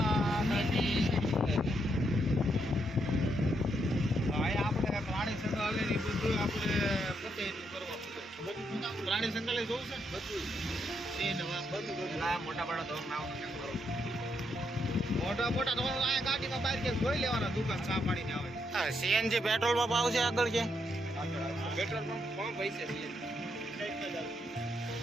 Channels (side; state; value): both; normal; correlation 0.78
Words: નથી. ભાઈ આપણે પ્રાણી સંગ્રહાલયની બધું આપણે પોતે કરવા બધું પ્રાણી સંગ્રહાલય જોવું છે બધું એ નવા બધું ના મોટા બડા તો નાવ મોટા મોટા તો આ ગાડીમાં બહાર કે જોઈ લેવાના દુકાન ચા પાણીને આવે. હા, સીએનજી પેટ્રોલ પંપ આવશે આગળ છે. પેટ્રોલ પંપ પૈસે